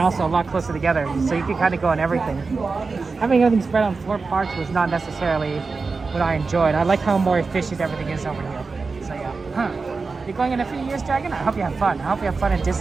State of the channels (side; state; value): left; quieter; 4.3 dB